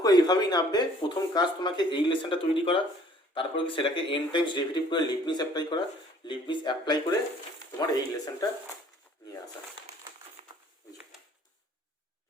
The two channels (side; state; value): both; normal; correlation 0.56